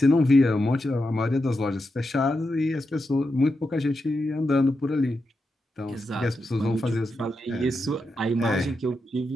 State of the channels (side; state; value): both; normal; correlation 0.87